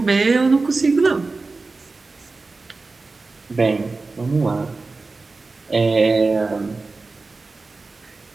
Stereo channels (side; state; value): left; quieter; 3.7 dB